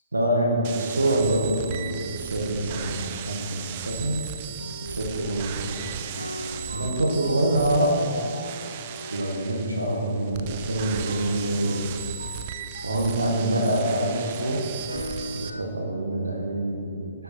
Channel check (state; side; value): inverted; both; correlation -0.64